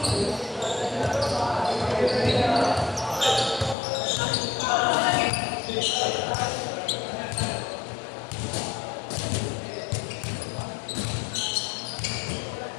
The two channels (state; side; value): drops out; right; at 3.8 s